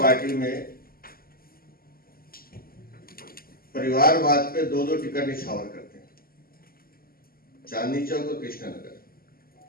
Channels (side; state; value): right; late; 0.43 ms